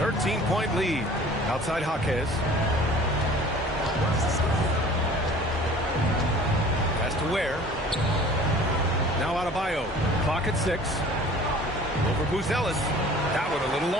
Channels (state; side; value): normal; both; correlation 0.47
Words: 13-point lead. Outside Jaquez. Pass to Ware. Now Adebayo. Clock at 6. Over Buzelis. That one a little